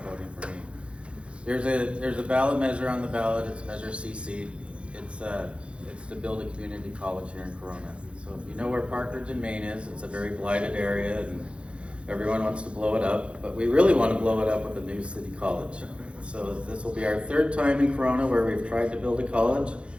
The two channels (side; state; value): left; late; 0.059 ms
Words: voting for me. There's a ballot measure on the ballot. It's Measure CC. It's to build a community college here in Corona. So if you know where Parkridge and Main is, it's a very blighted area, and everyone wants to blow it up, but we really want to blow it up with a new city college. So this will be our third time in Corona where we've tried to build a college.